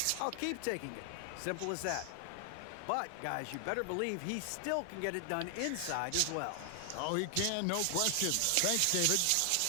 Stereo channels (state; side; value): different; both; correlation 0.00